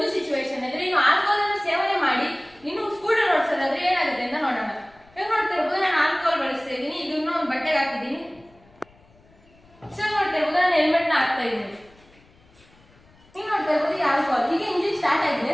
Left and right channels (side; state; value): left; noise; rumble, 29 dB below the sound